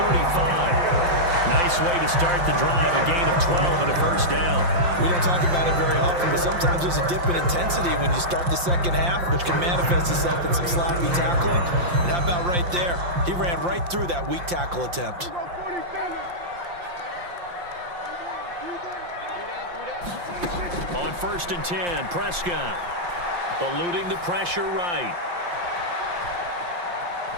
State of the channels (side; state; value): left; late; 5.7 ms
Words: Nice way to start the drive, a gain of 12 and a first down. We don't talk about it very often, but sometimes there's a dip in intensity when you start the second half, which can manifest itself in some sloppy tackling. And how about right there? He ran right through that weak tackle attempt. On 1st and 10, Prescott eluding the pressure right.